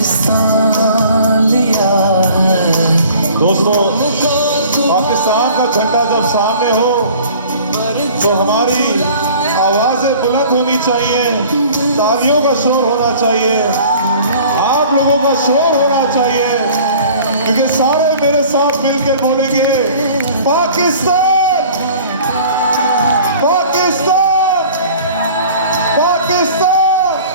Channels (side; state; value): both; inverted; correlation -0.48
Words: लिया है। दोस्तों, पाकिस्तान का झंडा जब सामने हो तो हमारी आवाजें बुलंद होनी चाहिए, तालियों का शोर होना चाहिए, आप लोगों का शोर होना चाहिए, क्योंकि सारे मेरे साथ मिलकर बोलेंगे पाकिस्तान, पाकिस्तान, पाकिस्तान।